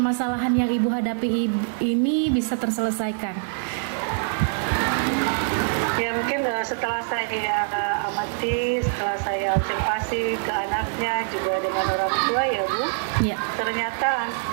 yang Ibu hadapi ini bisa terselesaikan? Ya mungkin setelah saya amati, setelah saya observasi ke anaknya juga dengan orang tua ya Bu, ya. Ternyata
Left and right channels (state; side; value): silent; left; 60 dB below the other